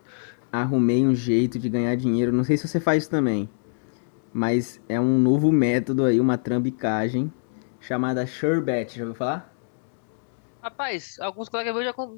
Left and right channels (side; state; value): right; silent; digital silence